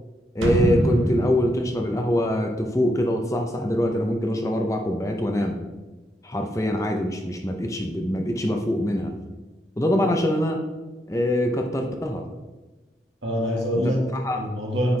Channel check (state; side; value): normal; both; correlation 0.79